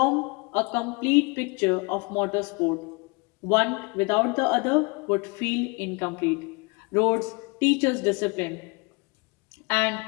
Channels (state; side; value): quieter; right; 29.7 dB